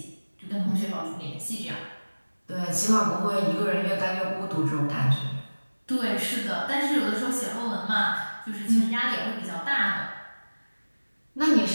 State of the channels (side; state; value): both; inverted; correlation -1.00